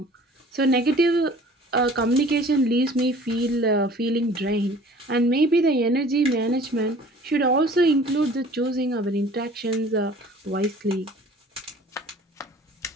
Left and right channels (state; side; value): normal; both; correlation 0.49